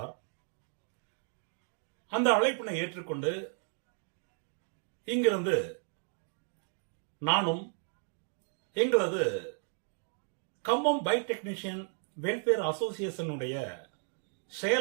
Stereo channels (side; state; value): left; silent; 55 dB below the other